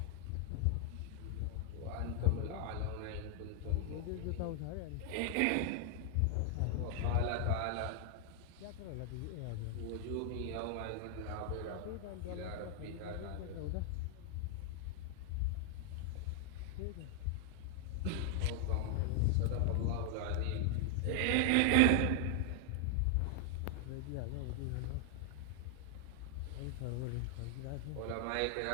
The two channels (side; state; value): both; different; correlation 0.00